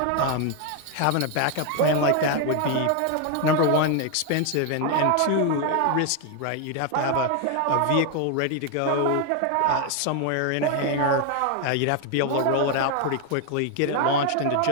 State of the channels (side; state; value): both; different; correlation 0.01